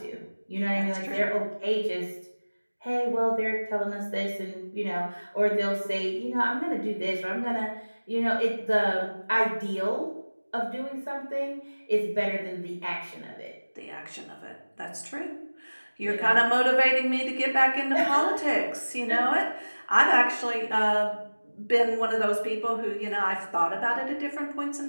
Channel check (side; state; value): both; inverted; correlation -1.00